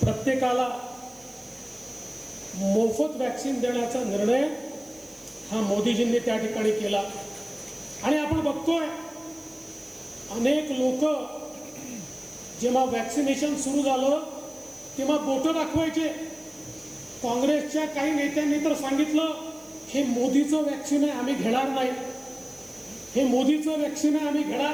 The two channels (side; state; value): right; noise; hiss, 24 dB below the sound